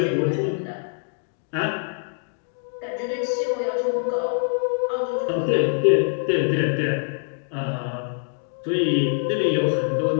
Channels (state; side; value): silent; right; 62 dB below the other